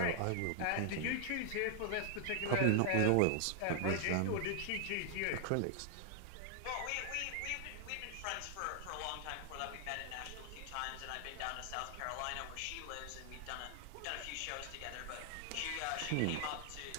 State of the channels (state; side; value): different; both; correlation 0.00